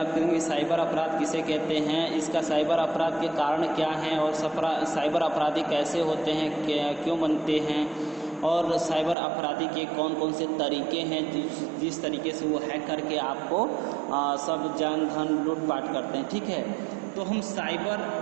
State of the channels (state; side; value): drops out; left; at 9.2 s